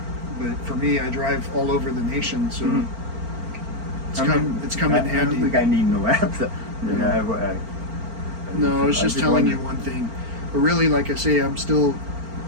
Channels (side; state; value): left; late; 4.4 ms